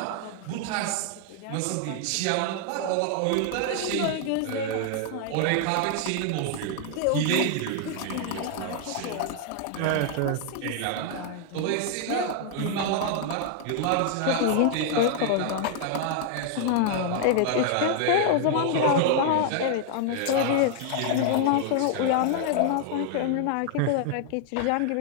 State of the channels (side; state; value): both; different; correlation 0.00